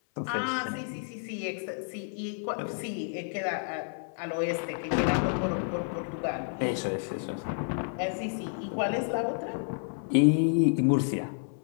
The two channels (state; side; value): silent; right; 58 dB below the other